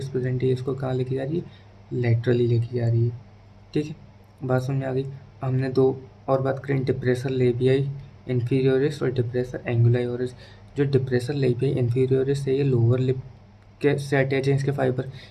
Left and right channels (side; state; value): both; identical; correlation 1.00